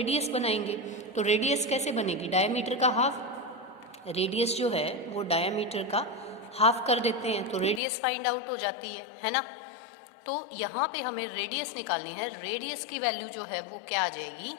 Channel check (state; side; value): drops out; right; at 7.8 s